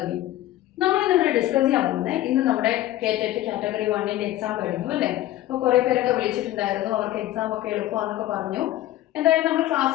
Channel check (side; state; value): right; quieter; 14.5 dB